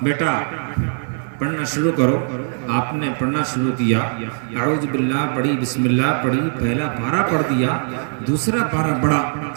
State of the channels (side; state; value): left; silent; digital silence